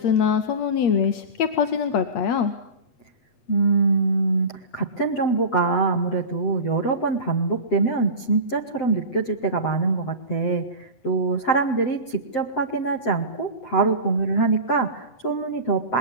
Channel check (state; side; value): late; right; 7.8 ms